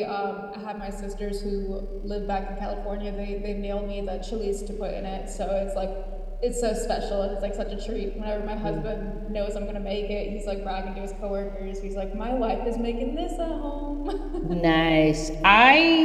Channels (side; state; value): both; identical; correlation 1.00